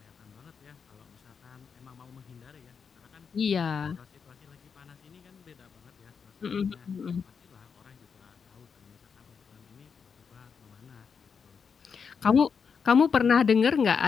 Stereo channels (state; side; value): quieter; right; 6.1 dB